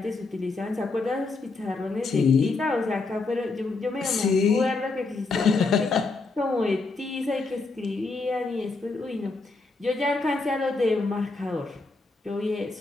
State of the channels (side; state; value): right; quieter; 3.7 dB